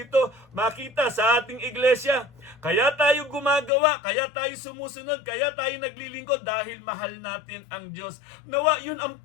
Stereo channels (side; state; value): right; drops out; at 3.7 s